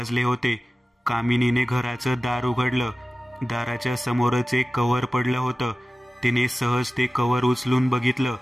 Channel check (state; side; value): normal; both; correlation 0.96